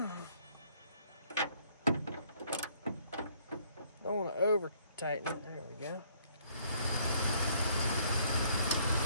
Don't want to over tighten it. There we go.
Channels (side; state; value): both; inverted; correlation -0.63